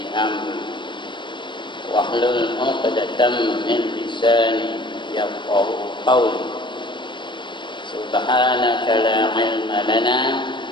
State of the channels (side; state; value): right; late; 0.23 ms